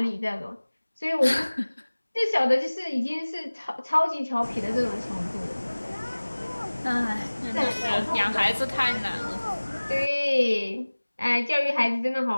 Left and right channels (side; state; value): both; inverted; correlation -1.00